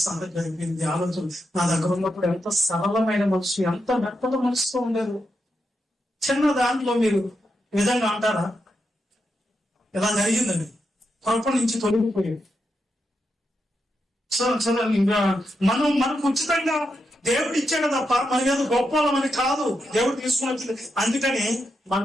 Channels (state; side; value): normal; both; correlation 0.85